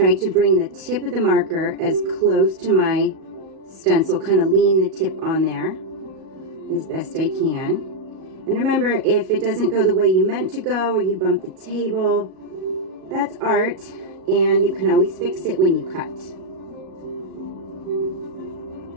to bring the tip of the marker as close to my stencil, kind of lean the tip on there as best I can. And remember, if it doesn't go the way you meant to go or you bump the table, that's art, and you can always fix it when you cut.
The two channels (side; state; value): left; late; 37 ms